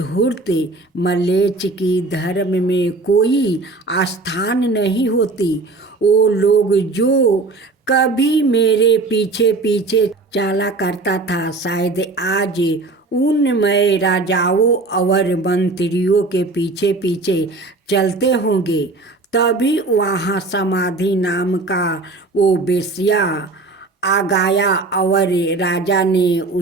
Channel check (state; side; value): quieter; left; 3.4 dB